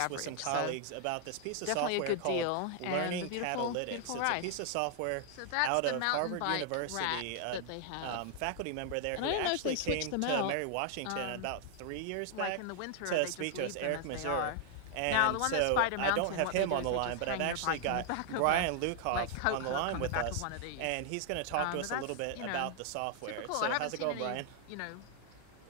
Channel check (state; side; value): different; both; correlation 0.00